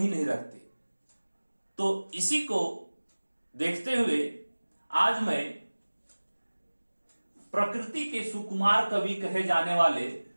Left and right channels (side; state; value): both; inverted; correlation -1.00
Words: नहीं रखते। तो इसी को देखते हुए आज मैं प्रकृति के सुकुमार कवि कहे जाने वाले